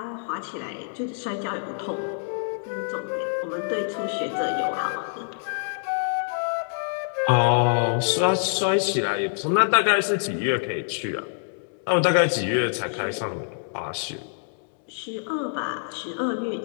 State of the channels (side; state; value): right; silent; 61 dB below the other